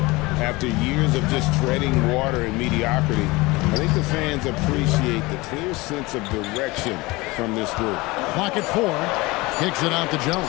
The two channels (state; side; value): quieter; right; 22.5 dB